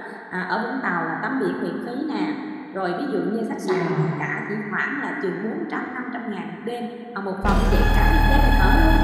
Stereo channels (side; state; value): both; identical; correlation 1.00